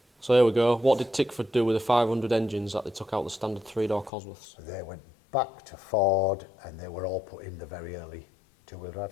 So here we go. What did Tickford do with the 500 engines that they took out the standard 3-door Cosworths? They went back to Ford, and they were all put in the very early 2-wheel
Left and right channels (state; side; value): drops out; right; at 4.1 s